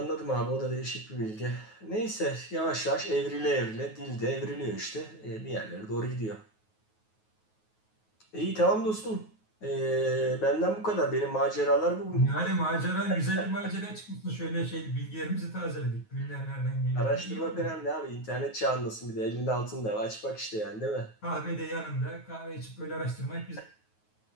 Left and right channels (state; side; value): late; right; 9.3 ms